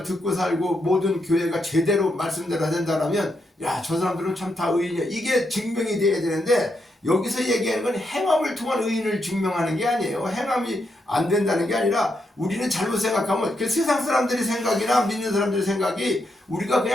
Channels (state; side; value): normal; both; correlation 0.81